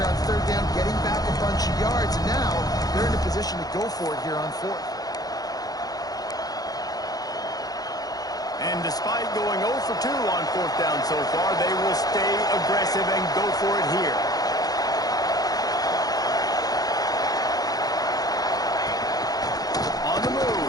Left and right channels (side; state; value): right; late; 0.18 ms